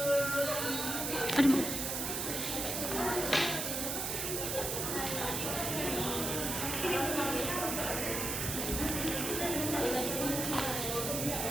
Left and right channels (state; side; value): noise; right; hiss, 1 dB below the sound